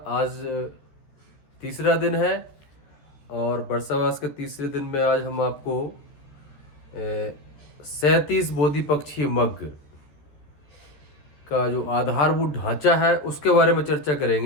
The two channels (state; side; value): late; right; 13 ms